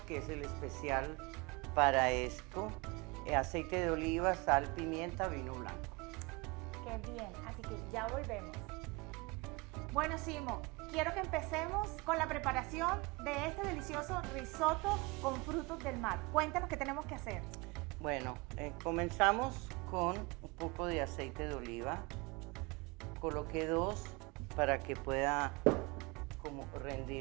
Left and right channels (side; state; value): left; quieter; 26.3 dB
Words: que es el especial para esto, aceite de oliva, sal, pimienta, vino blanco. Qué bien, así que ya volvemos. Bueno, Simo, quiero que empecemos con la preparación de este delicioso risotto con frutos del mar. Cuéntanos qué tenemos que hacer. Bueno, comenzamos con un poco de aceite de oliva. Coloqué 2 para que pueda como